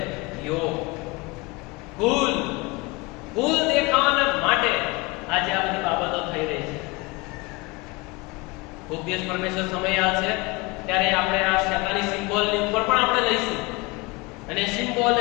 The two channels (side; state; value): right; quieter; 24.9 dB